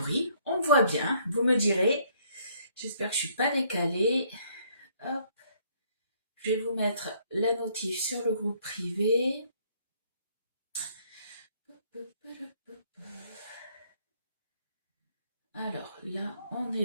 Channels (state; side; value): inverted; both; correlation -0.65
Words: on voit bien, vous me direz. J'espère que je suis pas décalée. Hop, je vais vous mettre la notif sur le groupe privé. Alors là, on